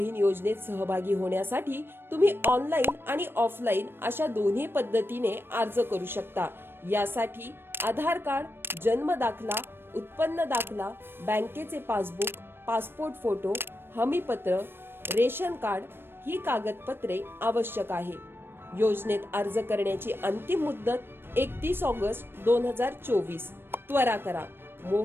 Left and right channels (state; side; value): late; left; 0.10 ms